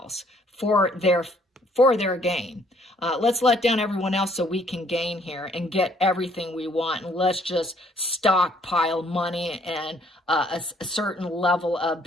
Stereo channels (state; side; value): normal; both; correlation 0.64